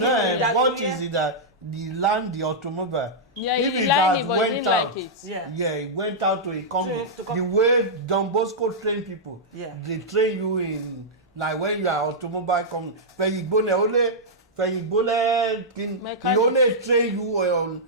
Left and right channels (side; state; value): both; normal; correlation -0.10